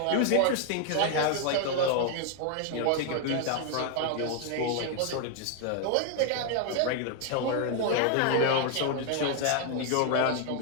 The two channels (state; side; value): different; both; correlation 0.00